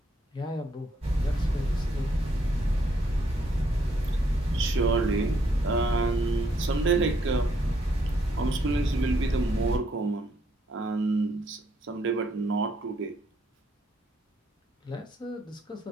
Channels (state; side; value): normal; both; correlation 0.72